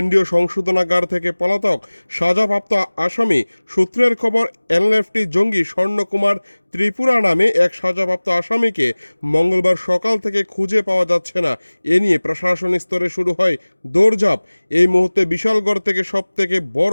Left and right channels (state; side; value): inverted; both; correlation -1.00